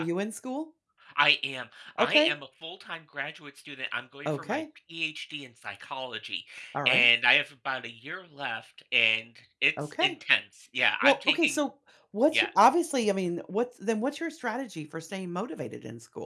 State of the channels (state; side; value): identical; both; correlation 1.00